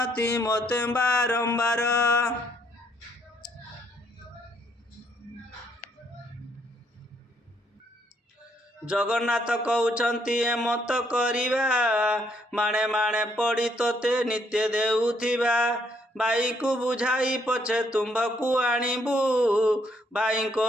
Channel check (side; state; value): both; normal; correlation 0.70